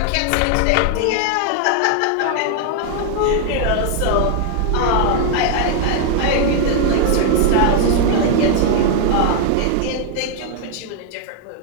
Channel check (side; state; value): both; different; correlation 0.00